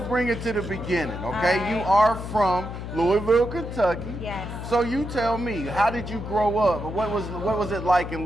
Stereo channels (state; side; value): noise; left; hum, 8 dB below the sound